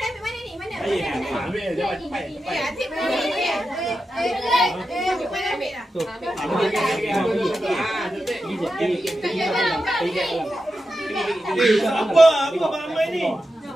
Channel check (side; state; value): both; normal; correlation 0.90